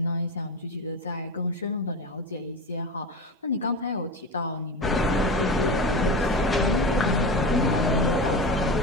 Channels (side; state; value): both; normal; correlation 0.25